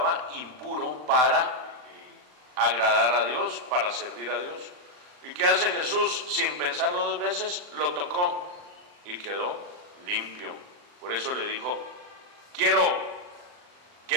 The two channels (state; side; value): late; left; 39 ms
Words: impuro para agradar a Dios, para servir a Dios. ¿Y qué hace Jesús? Sin pensarlo 2 veces, lo tocó y quedó limpio. Por eso le dijo: quiero,